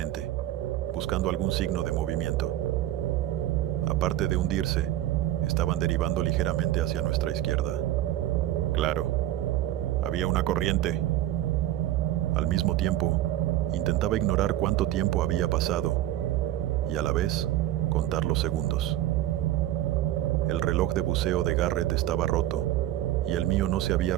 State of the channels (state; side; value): quieter; left; 13.6 dB